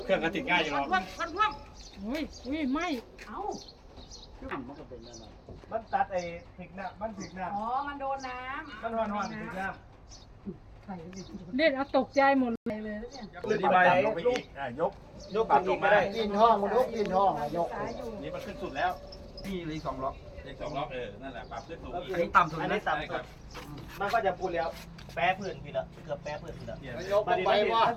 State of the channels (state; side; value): identical; both; correlation 1.00